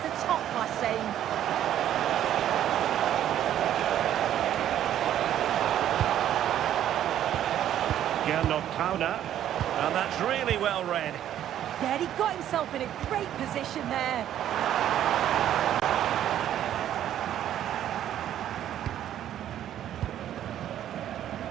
a top-class save. Counter, and that's really well read. Yeah, he got himself in a great position there.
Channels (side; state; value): left; quieter; 11.2 dB